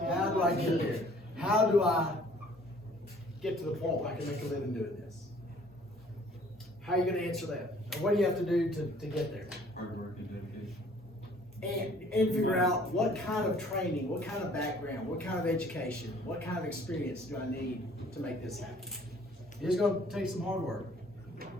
How do I get there? How do I get to the point where I can make a living doing this? How are you gonna answer that? And what do you have to do to get there? Hard work and dedication. And figure out what kind of training, what kind of background, what kind of education, what kind of experience do I need to make this happen? It's gonna take some hard work.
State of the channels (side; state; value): both; normal; correlation 0.56